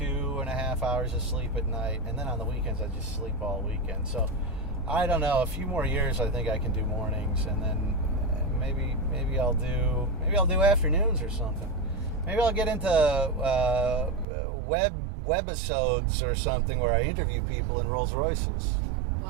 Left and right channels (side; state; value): left; drops out; at 14.2 s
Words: hours of sleep at night, and then on the weekends I just sleep all weekend. So I don't know, a few more years I think I can do mornings, and then maybe I'll do afternoons or something. Maybe I'll get into webisodes or something where I interview people in Rolls Royces.